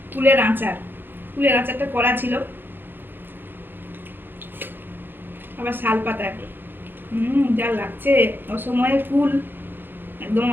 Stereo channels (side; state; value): left; late; 0.098 ms